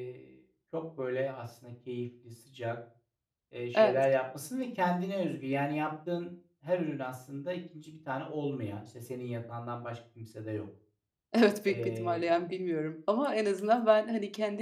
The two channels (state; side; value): identical; both; correlation 1.00